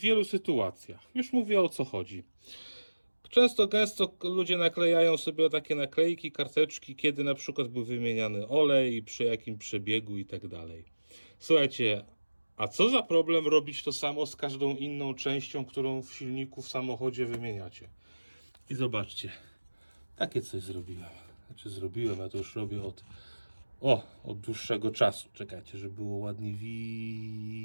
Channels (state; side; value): inverted; both; correlation -1.00